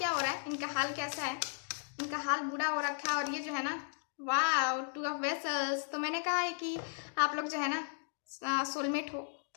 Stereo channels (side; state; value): right; silent; digital silence